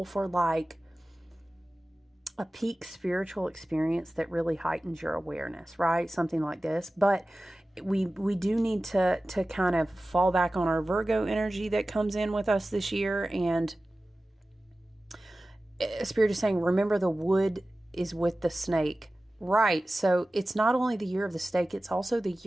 for like a peak spiritual experience that really heightens your awareness, right? Something like this. But we do need to kind of fall back on our Virgo energy that comes in with us this year. And Spirit is saying, remember the wood is with the snake. Right. So it's not only the year of the snake, it's also the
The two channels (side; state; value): both; normal; correlation 0.96